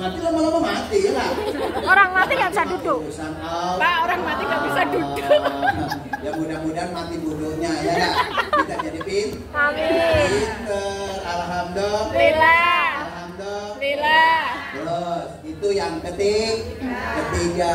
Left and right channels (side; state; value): both; identical; correlation 1.00